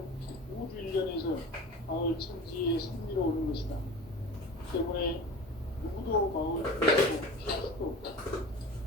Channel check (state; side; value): normal; both; correlation 0.35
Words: 우주 일련에서 마을 천지의 섭리로 오는 것이다. 때문에 누구도 마을 피하고 피할 수도 없다.